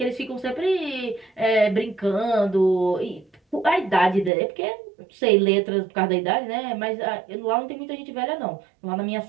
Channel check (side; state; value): left; drops out; at 4.3 s